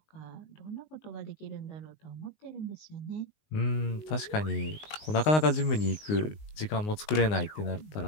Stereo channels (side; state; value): right; late; 19 ms